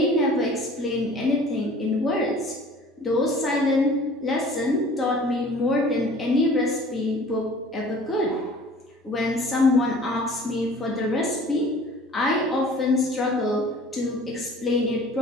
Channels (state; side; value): normal; both; correlation 0.48